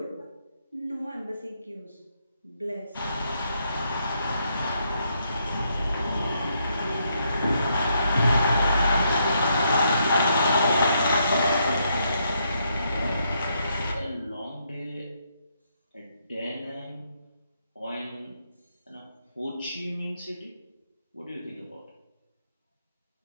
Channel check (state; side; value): inverted; both; correlation -0.76